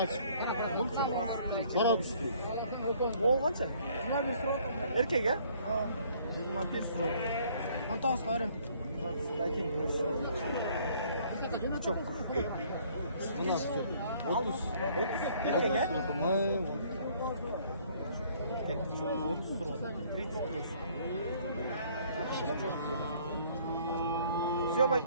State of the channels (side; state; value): both; inverted; correlation -0.60